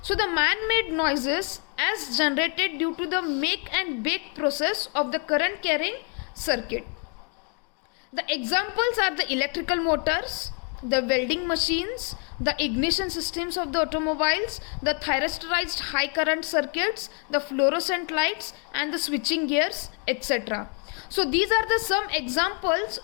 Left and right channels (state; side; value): quieter; right; 37.3 dB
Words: So the man-made noises as generated due to the make and bake process of the current carrying circuit. The examples are the electrical motors, the welding machines, the ignition systems of the automobiles, the thyristorized high current circuits, the fluorescent lights, and the switching gears, etc. So these are the some examples